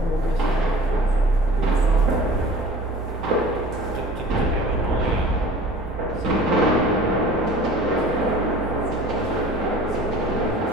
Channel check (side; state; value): both; normal; correlation 0.44